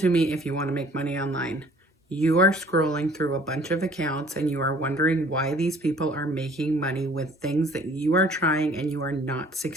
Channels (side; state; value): both; normal; correlation 0.54